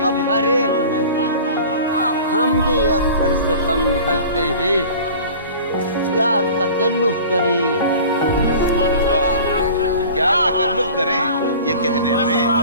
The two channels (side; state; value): both; inverted; correlation -0.41